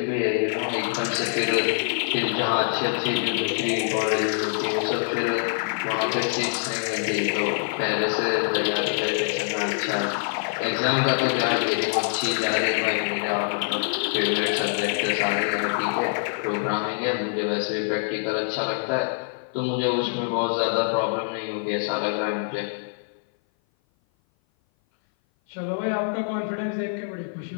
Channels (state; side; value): silent; right; 57 dB below the other